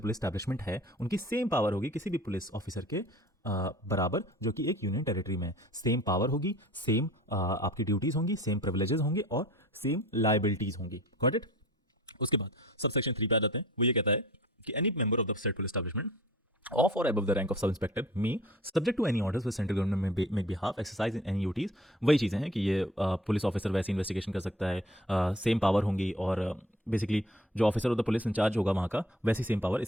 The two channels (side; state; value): both; normal; correlation 0.47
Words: एस्टैब्लिशमेंट है, उनकी सेम पावर होगी किसी भी पुलिस ऑफिसर के बराबर जो कि एक यूनियन टेरिटरी में। सेम पावर होगी, सेम आपकी ड्यूटीज़ होंगी, सेम प्रिविलेजेस होंगे और सेम लाइबिलिटीज़ होंगी। Got it? उसके बाद सब सेक्शन 3 पे आ जाते हैं। वो ये कहता है कि any member of the state police establishment of or above the rank of sub inspector me subject to any orders with central government may make behalf exercise in any duties। वही चीज़ें हैं कि ये पुलिस ऑफिसर वैसे investigation कर सकता है, same power होंगी, और बेसिकली जो officer of the police in charge होगा वहाँ का, वैसी सेम पावर